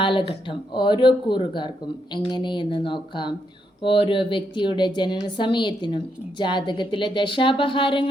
ഓരോ കൂറുകാർക്കും എങ്ങനെയെന്ന് നോക്കാം. ഓരോ വ്യക്തിയുടെ ജനന സമയത്തിനും ജാതകത്തിലെ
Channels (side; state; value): both; normal; correlation 0.79